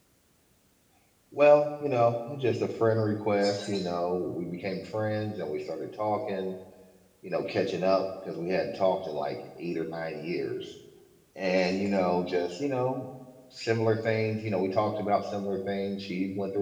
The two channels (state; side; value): identical; both; correlation 1.00